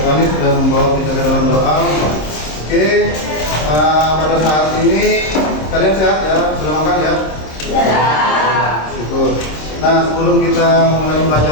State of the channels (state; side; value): late; right; 26 ms